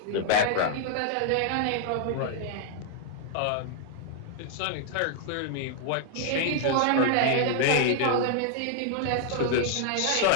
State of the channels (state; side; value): different; both; correlation 0.00